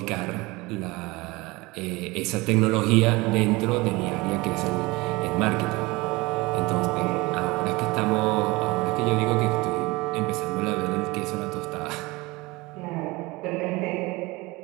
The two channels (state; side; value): quieter; left; 22.8 dB